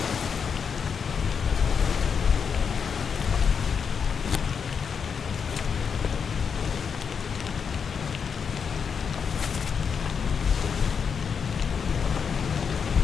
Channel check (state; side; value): quieter; right; 6.4 dB